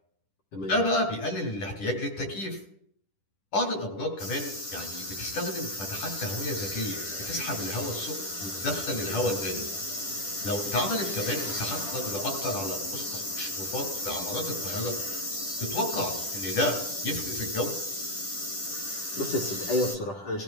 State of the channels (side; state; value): right; late; 10 ms